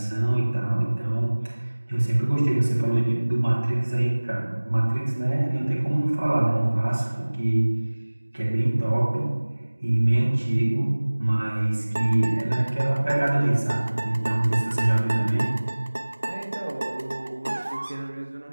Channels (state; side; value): inverted; both; correlation -1.00